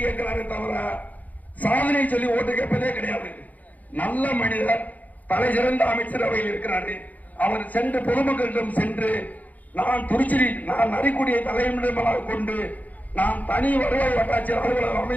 கேட்கிறாரு தவிர சாதனை சொல்லி ஓட்டு கேட்பதே கிடையாது. நல்ல மனிதர், தலை சிறந்த அமைச்சரவையில் இருக்கிறாரு. அவர் சென்று பொதுமக்களிடம் சென்று நான் நரிக்குடியை தலைமையிடமாக கொண்டு நான் தனி வருவாய் வட்டாட்சியர் அலுவலகம்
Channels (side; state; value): right; late; 0.078 ms